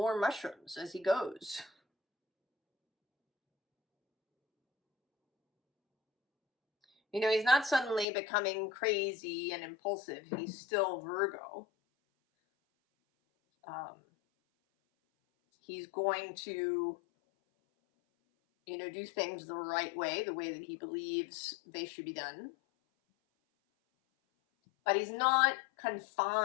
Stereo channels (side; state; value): right; drops out; at 8.1 s